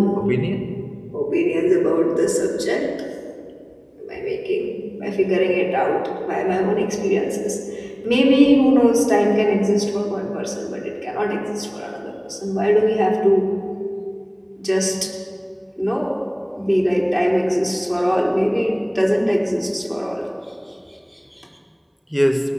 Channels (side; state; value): both; identical; correlation 1.00